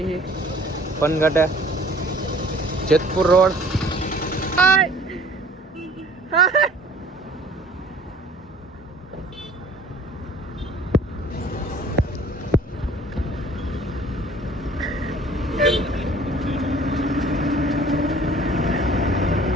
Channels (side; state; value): both; normal; correlation 0.51